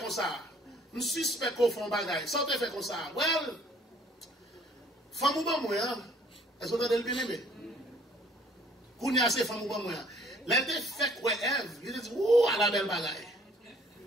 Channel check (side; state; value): both; normal; correlation 0.58